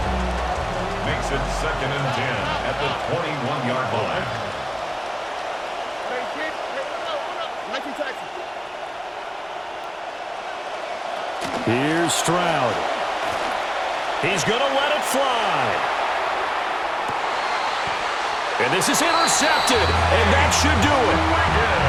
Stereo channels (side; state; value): both; identical; correlation 1.00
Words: Makes it 2nd and 10 at the 21-yard line. Here's Stroud. He's going to let it fly. And this is intercepted, and that should do it.